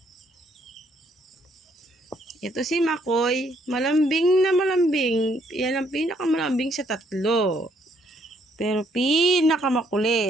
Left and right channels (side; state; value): both; normal; correlation 0.69